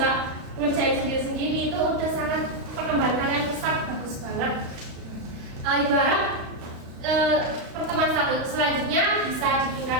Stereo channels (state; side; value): late; left; 35 ms